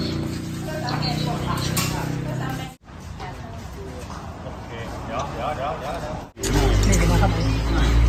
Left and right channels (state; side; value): identical; both; correlation 1.00